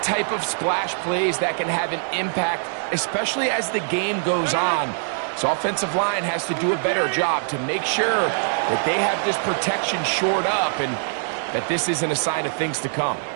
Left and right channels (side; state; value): left; silent; digital silence